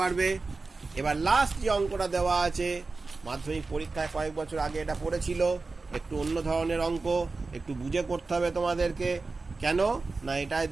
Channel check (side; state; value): left; quieter; 3.8 dB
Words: এবার লাস্ট যে অঙ্কটা দেওয়া আছে, মাধ্যমিক পরীক্ষায় কয়েক বছর আগে এটা পড়েছিল, একটু অন্য ধরনের অঙ্ক, একটু বুঝে করতে হবে তোমাদেরকে। কেন না, এটাই